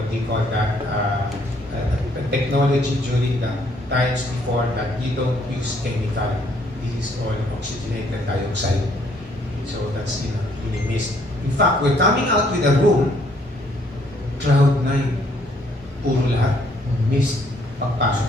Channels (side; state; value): both; normal; correlation 0.66